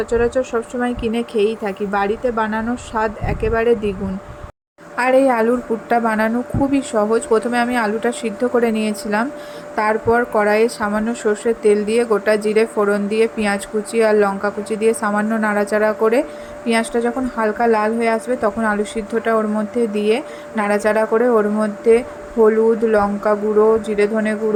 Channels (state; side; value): identical; both; correlation 1.00